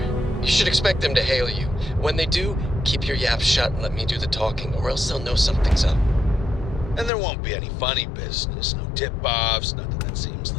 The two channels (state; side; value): drops out; right; at 7.1 s